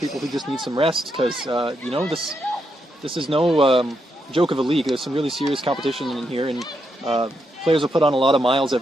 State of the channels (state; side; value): normal; both; correlation 0.81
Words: who just need some rest because, you know, this is no joke of a league. There's some really serious competition in here, and players will put on a lot of miles